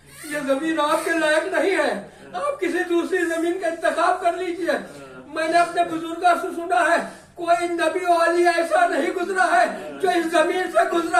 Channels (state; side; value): identical; both; correlation 1.00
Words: ये जमीन आपके लायक नहीं है, आप किसी दूसरी जमीन का इंतखाब कर लीजिए। मैंने अपने बुजुर्गों से सुना है कोई नबी वाली ऐसा नहीं गुजरा है जो इस जमीन से